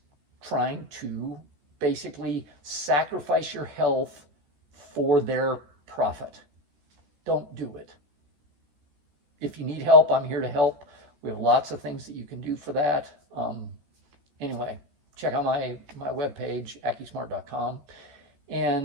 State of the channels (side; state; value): left; late; 14 ms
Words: trying to basically sacrifice your health for their profit. Don't do it. If you need help, I'm here to help. We have lots of things that you can do for that. Anyway, check out my webpage, AccuSmart.com.